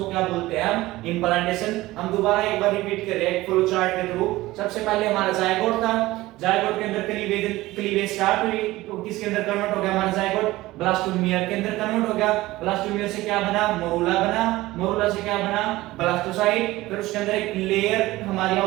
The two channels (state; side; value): quieter; left; 18.1 dB